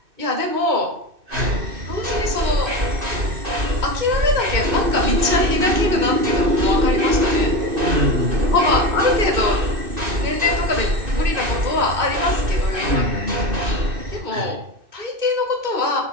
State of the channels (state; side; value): late; left; 2.6 ms